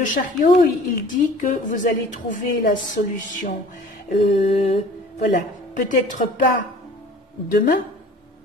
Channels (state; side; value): normal; both; correlation 0.46